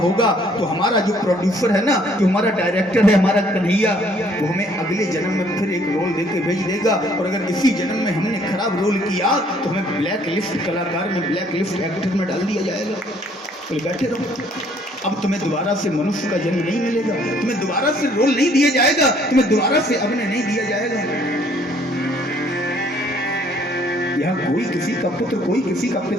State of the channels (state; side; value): normal; both; correlation 0.62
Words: तो हमारा जो प्रोड्यूसर है ना, जो हमारा डायरेक्टर है, हमारा कन्हैया, वो हमें अगले जन्म में फिर एक रोल देके भेज देगा। और अगर इसी जन्म में हमने खराब रोल किया तो हमें ब्लैक लिस्ट कलाकार में, ब्लैक लिस्ट एक्टर में डाल दिया जाएगा। तो बैठे रहो, अब तुम्हें दोबारा से मनुष्य का जन्म नहीं मिलेगा, तुम्हें दोबारा से रोल नहीं दिया जाएगा, तुम्हें दोबारा से अभिनय नहीं दिया जाएगा। यहाँ कोई किसी का पुत्र, कोई किसी का